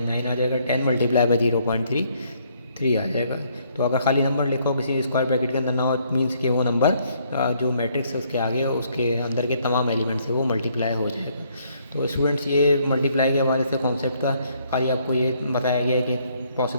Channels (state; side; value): inverted; both; correlation -0.68